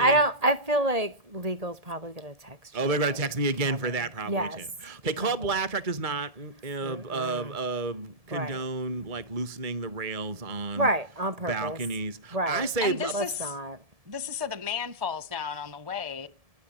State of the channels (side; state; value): left; late; 1.7 ms